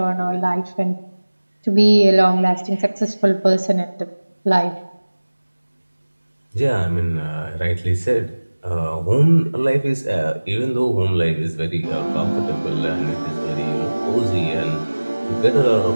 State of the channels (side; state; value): both; inverted; correlation -1.00